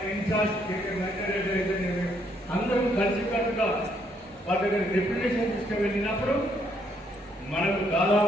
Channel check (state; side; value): normal; both; correlation 0.71